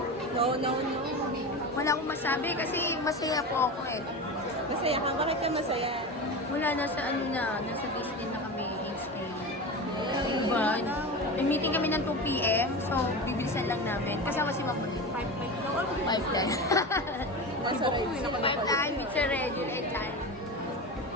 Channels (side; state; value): both; normal; correlation 0.26